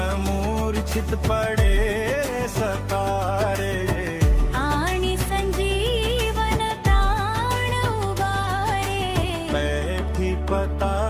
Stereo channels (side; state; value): both; identical; correlation 1.00